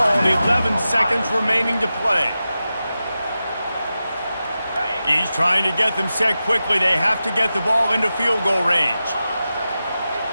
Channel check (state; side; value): inverted; both; correlation -0.92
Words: 11 seconds remaining to play. He's trying to get them set quickly. They have to get the ball into field goal range.